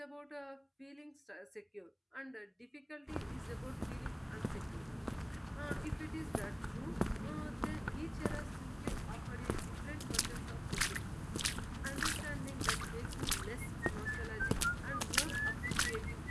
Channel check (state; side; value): identical; both; correlation 1.00